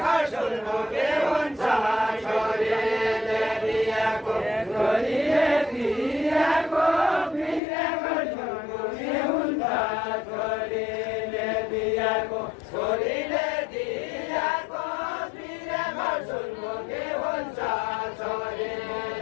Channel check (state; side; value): drops out; right; at 7.6 s